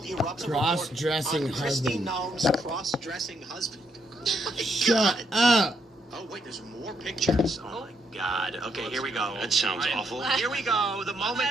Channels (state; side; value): normal; both; correlation 0.76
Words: erupts. A report Cross-dressing on Christy husband. Noem's cross-dressing husband. Oh my Shut God. up! Oh wait, there's more pictures. Oh my God. Okay, here we go. That sounds awful. Here we go. The